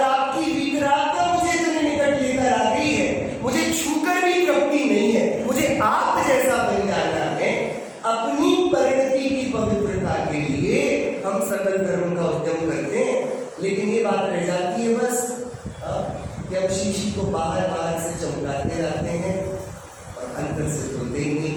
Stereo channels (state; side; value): identical; both; correlation 1.00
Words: आपकी वितरागता मुझे इतने निकट लेकर आ गई है, मुझे छूकर भी तृप्ति नहीं है, मुझे आप जैसा बन जाना है। अपनी परिणति की पवित्रता के लिए हम सकल धर्म का उद्यम करते हैं, लेकिन ये बात रह जाती है बस कि हम शीशी को बाहर बाहर से चमकाते रहते हैं और अंदर से धोते ही नहीं।